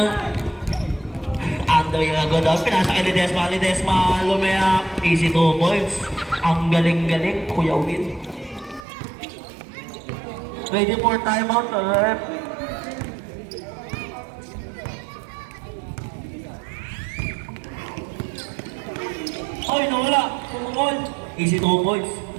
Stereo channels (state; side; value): drops out; left; at 8.8 s